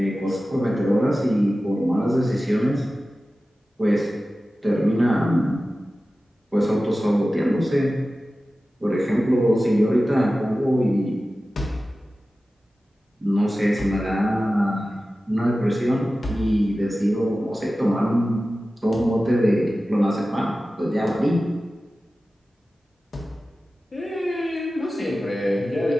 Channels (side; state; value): both; normal; correlation 0.95